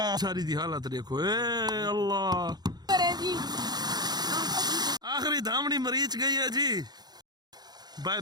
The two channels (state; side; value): late; left; 0.20 ms